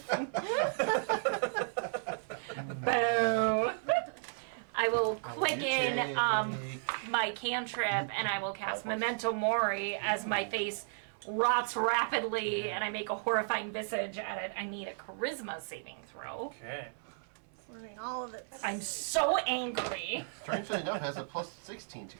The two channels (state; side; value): silent; left; 55 dB below the other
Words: Boo. I will quicken my cantrip, and I will cast Memento Mori as my face rots rapidly, and I make a horrifying visage at it. I need a charisma saving throw. Okay. Learning all of it. I'm so angry. Strangely enough, it has a plus 16 to